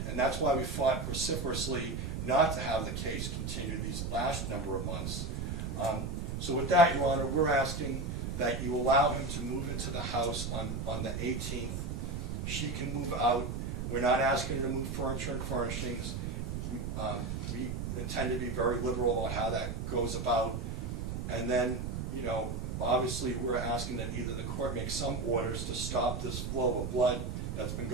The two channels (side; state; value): right; noise; rumble, 3 dB below the sound